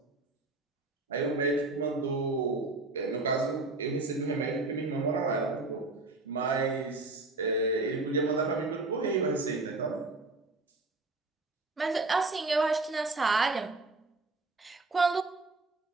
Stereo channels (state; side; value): quieter; left; 3.3 dB